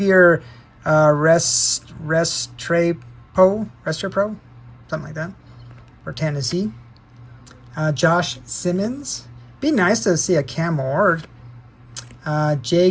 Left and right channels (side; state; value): both; identical; correlation 1.00